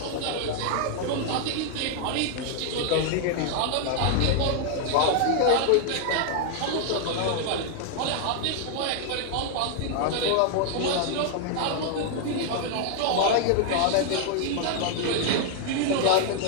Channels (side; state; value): both; different; correlation 0.00